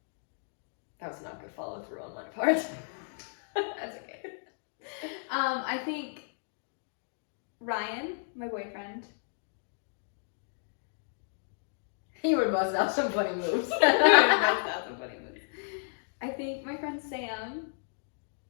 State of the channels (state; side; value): silent; right; digital silence